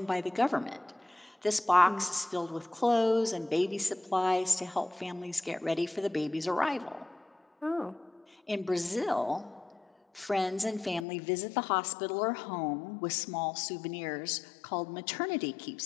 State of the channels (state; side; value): drops out; right; at 11.1 s